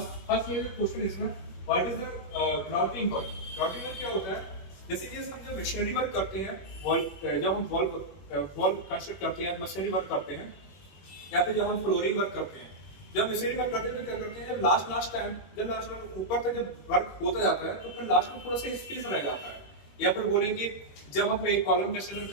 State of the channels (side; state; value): right; late; 21 ms